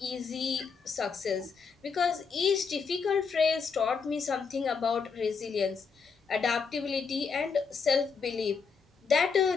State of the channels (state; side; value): quieter; right; 5.4 dB